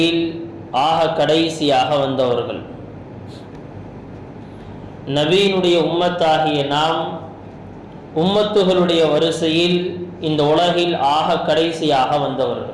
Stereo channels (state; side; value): identical; both; correlation 1.00